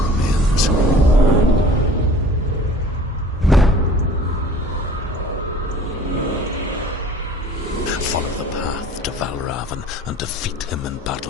Follow the path to Valravan and defeat him in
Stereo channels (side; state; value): both; normal; correlation 0.47